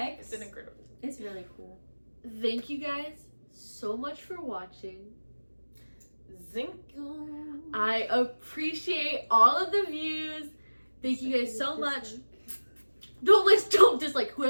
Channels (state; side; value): inverted; both; correlation -1.00